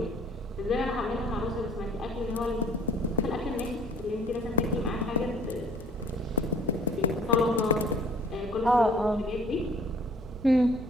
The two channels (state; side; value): normal; both; correlation 0.54